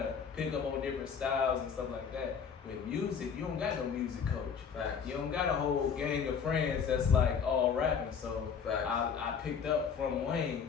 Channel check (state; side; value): quieter; right; 6.6 dB